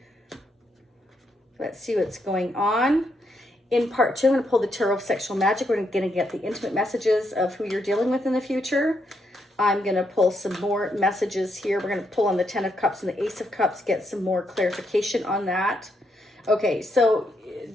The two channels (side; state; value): both; normal; correlation 0.78